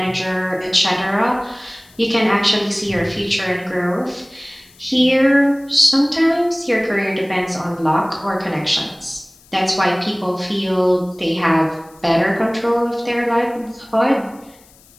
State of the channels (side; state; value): left; noise; hiss, 27 dB below the sound